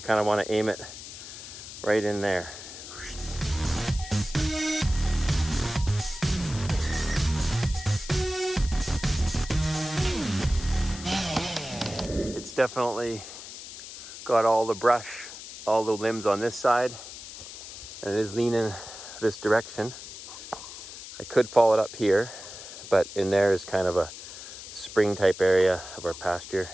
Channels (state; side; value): noise; left; hiss, 12 dB below the sound